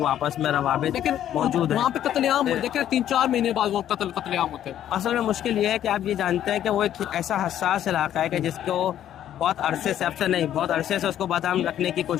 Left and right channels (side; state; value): right; quieter; 11.1 dB